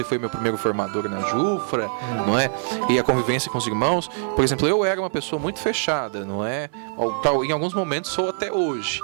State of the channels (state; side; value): silent; left; digital silence